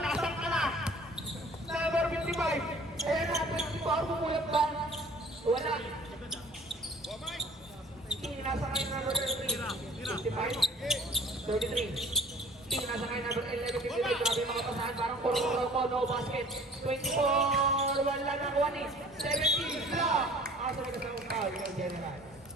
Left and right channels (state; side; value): normal; both; correlation 0.50